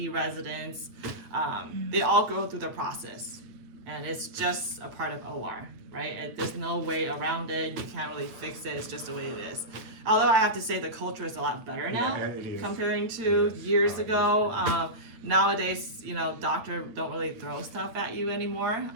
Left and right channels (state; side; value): late; left; 9.1 ms